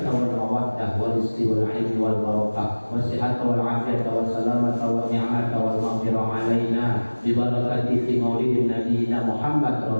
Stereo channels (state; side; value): inverted; both; correlation -1.00